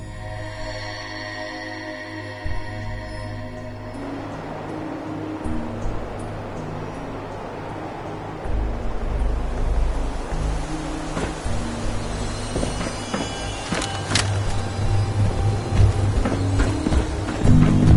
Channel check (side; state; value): both; identical; correlation 1.00